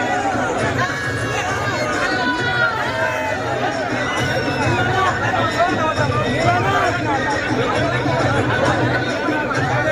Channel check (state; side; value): identical; both; correlation 1.00